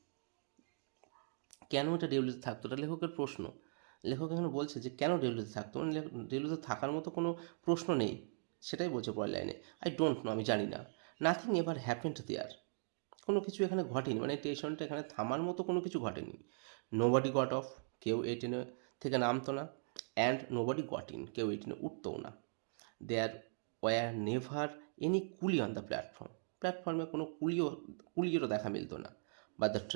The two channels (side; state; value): left; silent; digital silence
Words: কেন এটা ডেউলিতে থাকতো, এটা লেখকের প্রশ্ন। লেখক এখানে বলছে যে কেন ডেউলিতে থাকতো, মানে ডেউলিতে থাকার মতো কোনো প্রশ্ন নেই, সেটাই বলছে পরের লাইনে। আই ডোন্ট নো, আমি জানি না। নাথিং এভার হ্যাপেন্ড দেয়ার, কোনো কিছু এখানে ঘটেনি, মানে স্টেশনটা এখানে থামার মতো কোনো কিছু ঘটেনি। নোবডি গট অফ, কেউ এই ট্রেনে থেকে নামতো না। অ্যান্ড নোবডি গট ইন, কেউ এই ট্রেনে উঠতও না। There were never any coolie on the platform, প্ল্যাটফর্মে কোনো কুলিয়েরও দেখা মিলত না। But the